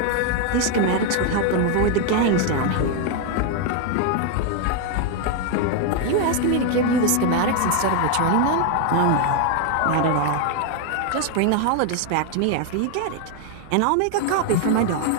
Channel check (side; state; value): both; different; correlation 0.01